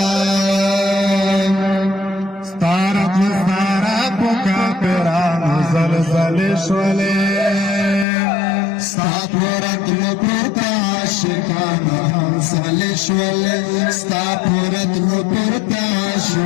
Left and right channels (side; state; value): right; drops out; at 8.1 s